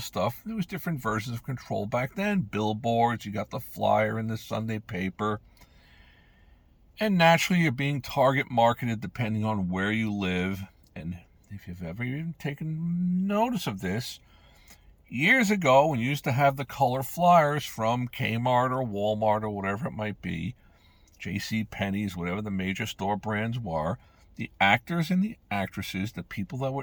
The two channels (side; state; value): both; identical; correlation 1.00